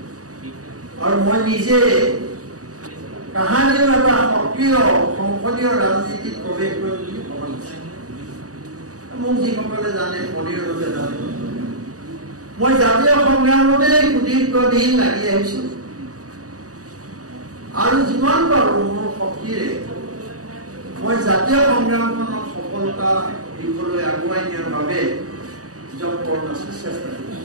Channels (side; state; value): left; late; 0.66 ms